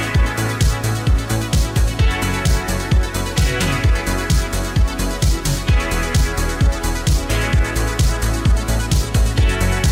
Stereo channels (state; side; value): identical; both; correlation 1.00